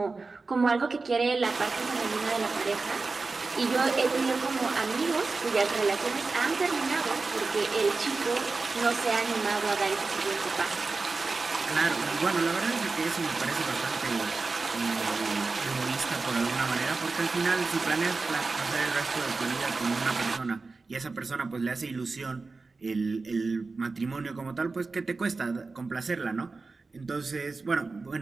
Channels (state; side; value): quieter; left; 4.0 dB